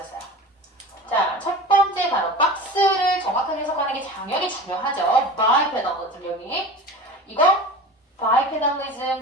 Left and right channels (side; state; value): both; normal; correlation 0.34